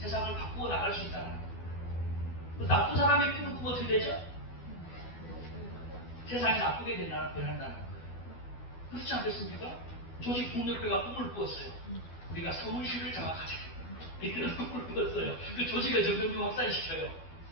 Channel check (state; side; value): late; right; 12 ms